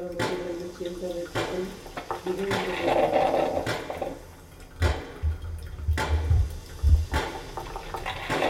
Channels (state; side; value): identical; both; correlation 1.00